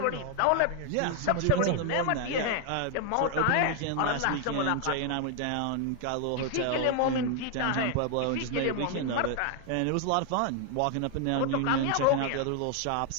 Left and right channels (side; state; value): both; different; correlation 0.00